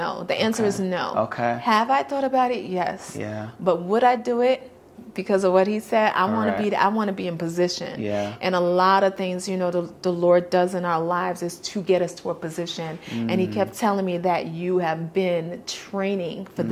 The answer is no. Have I thought about it? Yes. But would I do it? Because of what he said, I want to be in position. And a lot of things, the Lord does in our lives is to get us to a position. And he kept telling me that you have been training for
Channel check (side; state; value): both; identical; correlation 1.00